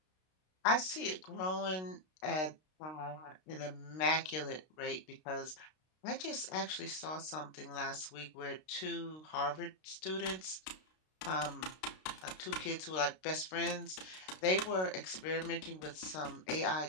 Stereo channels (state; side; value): late; right; 32 ms